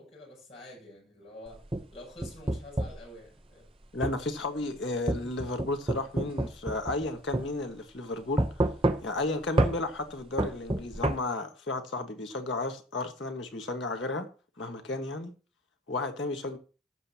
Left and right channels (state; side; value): normal; both; correlation 0.51